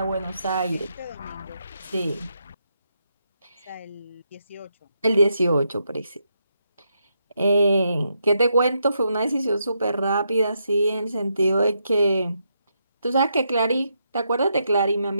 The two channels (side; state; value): both; inverted; correlation -0.80